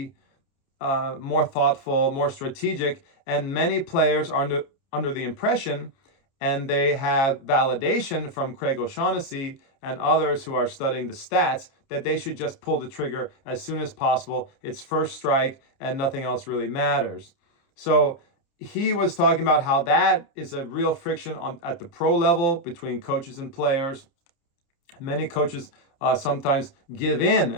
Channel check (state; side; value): late; right; 29 ms